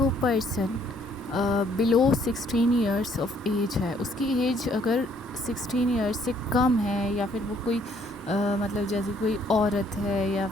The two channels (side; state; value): both; normal; correlation 0.65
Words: person below 16 years of age है, उसकी एज अगर 16 ईयर्स से कम है, या फिर वो कोई मतलब जैसे कोई औरत है या